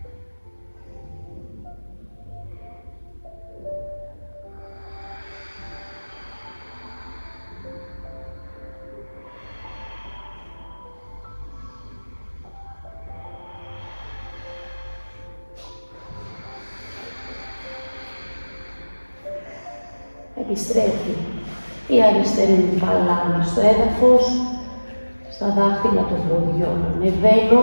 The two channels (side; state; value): both; inverted; correlation -1.00